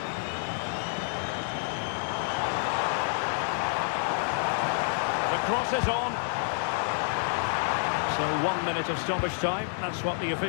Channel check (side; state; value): right; silent; digital silence